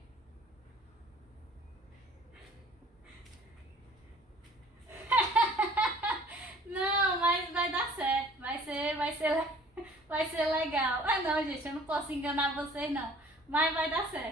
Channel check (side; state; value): both; normal; correlation 0.52